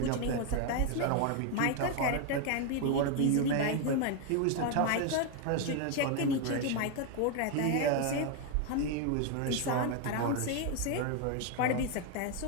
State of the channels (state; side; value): different; both; correlation 0.01